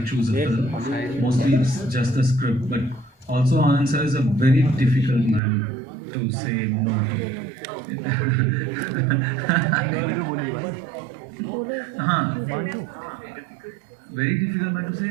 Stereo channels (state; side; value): drops out; left; at 5.4 s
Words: choose a film. Mostly it's just the script. But also Anand sir is a very difficult man to say no to. Very difficult man to say